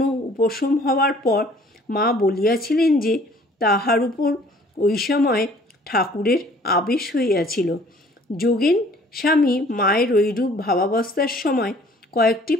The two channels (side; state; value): both; normal; correlation 0.55